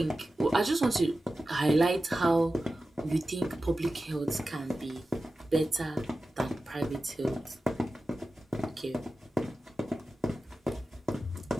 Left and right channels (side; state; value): both; normal; correlation 0.94